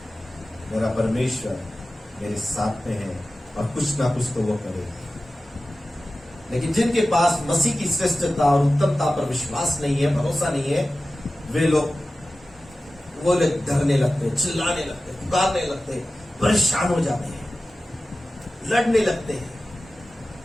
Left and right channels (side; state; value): both; normal; correlation 0.95